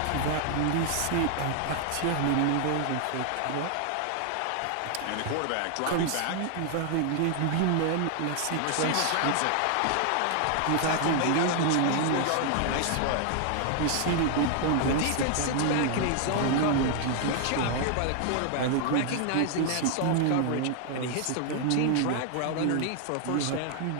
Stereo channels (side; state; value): both; different; correlation 0.00